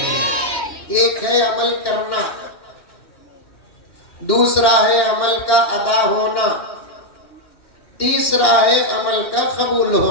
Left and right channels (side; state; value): right; late; 2.9 ms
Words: ایک ہے عمل کرنا، دوسرا ہے عمل کا ادا ہونا، تیسرا ہے عمل کا قبول